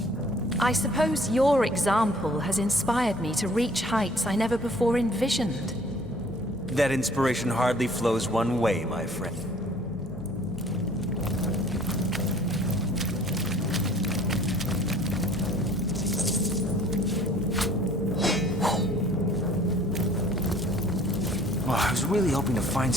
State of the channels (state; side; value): noise; left; hum, 15 dB below the sound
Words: I suppose your example has inspired me to reach heights I never before envisioned. That inspiration hardly flows one way, my friend. Oh, I was really hoping to find